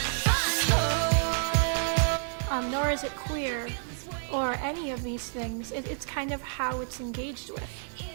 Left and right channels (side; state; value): left; silent; digital silence